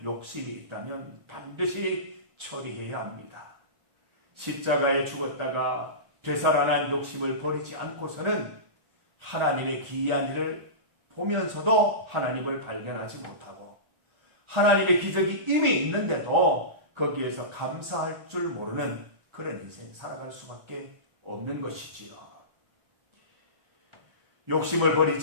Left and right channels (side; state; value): left; late; 1.4 ms